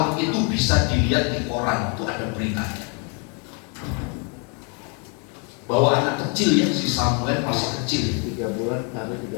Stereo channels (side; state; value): right; quieter; 36.3 dB